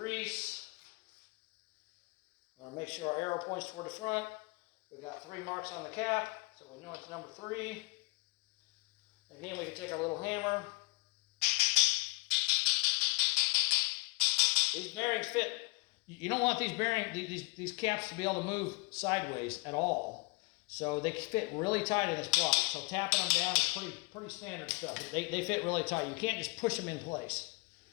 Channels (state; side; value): quieter; right; 30.2 dB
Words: I want to make sure our arrow points toward the front. We got 3 marks on the cap, so we know it's number 3. Again, we can take our little hammer. These bearings fit. You don't want these caps to be able to move sideways at all. So they fit really tight in this block. So tapping them down is pretty standard stuff. They fit really tight. You can't just push them in place.